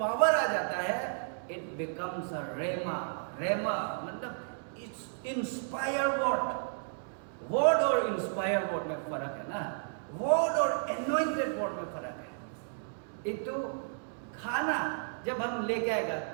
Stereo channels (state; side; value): silent; left; digital silence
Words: आ जाता है it becomes a rhema. Rhema मतलब इट्स इंस्पायर वर्ड और इंस्पायर वर्ड में फर्क है ना, वर्ड और एनोइंटेड वर्ड में फर्क है। एक तो खाना जब हम लेके आएगा,